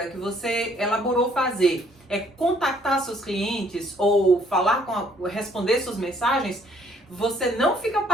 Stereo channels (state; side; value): normal; both; correlation 0.64